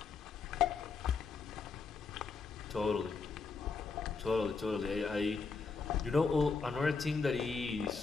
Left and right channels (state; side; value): quieter; right; 4.8 dB